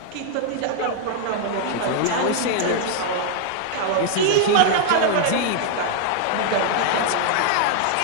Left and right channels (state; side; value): different; both; correlation 0.00